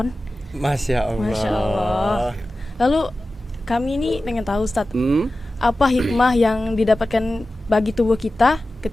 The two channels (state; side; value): normal; both; correlation 0.95